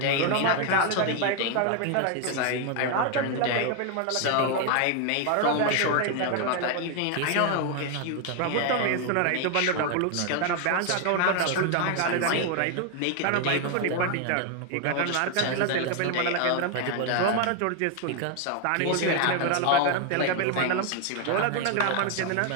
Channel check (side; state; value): both; different; correlation 0.01